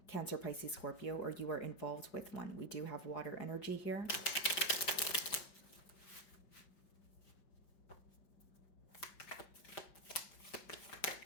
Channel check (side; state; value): right; late; 5.0 ms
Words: Cancer, Pisces, Scorpio, or you are involved with one. We do have water energy here.